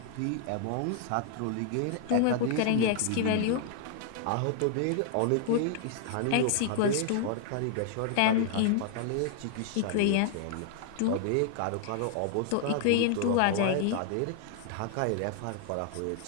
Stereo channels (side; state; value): both; different; correlation -0.01